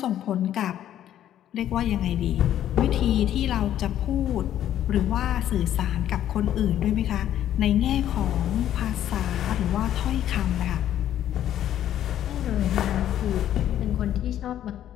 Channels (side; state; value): right; quieter; 11.4 dB